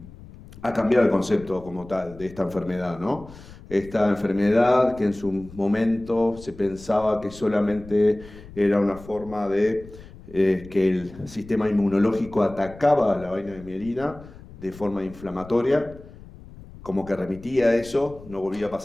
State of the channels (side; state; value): left; noise; rumble, 18 dB below the sound